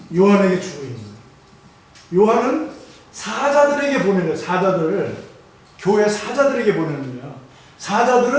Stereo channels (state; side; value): identical; both; correlation 1.00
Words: 요한에게 주고 있는 거예요. 요한은 사자들에게 보내는 사자들을 교회 사자들에게 보내는 거예요.